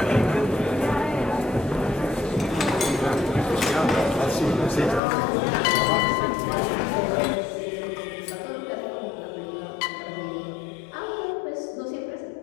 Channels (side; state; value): right; drops out; at 5.0 s